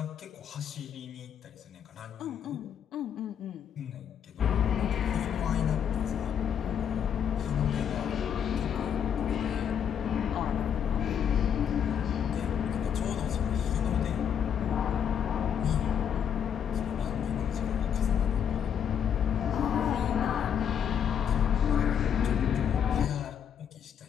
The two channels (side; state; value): right; quieter; 8.4 dB